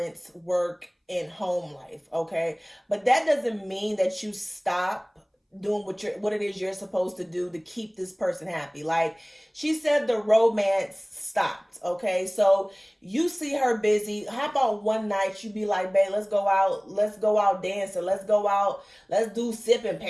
work and home life, okay? But that doesn't mean that you stop doing what it is you're supposed to do to keep this person happy. Like she said, the romance stopped, okay? So you see her busy. How about one night you be like, babe, let's go out dancing, let's do sip and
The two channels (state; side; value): identical; both; correlation 1.00